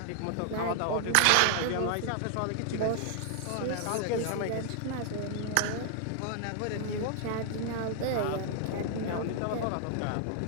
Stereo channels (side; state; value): both; different; correlation 0.00